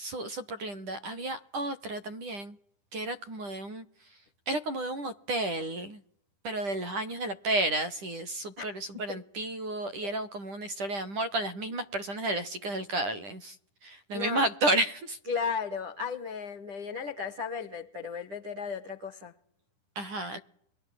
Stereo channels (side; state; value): left; late; 10 ms